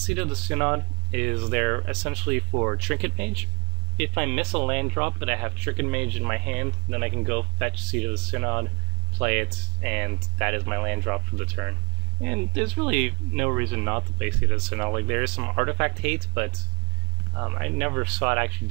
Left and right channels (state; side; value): quieter; left; 35.7 dB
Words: of the Synod is there essentially for Trinket Mage. If I miss a land drop but I have Trinket Mage in my hand, then I can go fetch Seat of the Synod, play it, and that is my land drop for the turn. And there's really no reason not to play Seat of the Synod. Like, there is some artifact hate, but I never saw it actually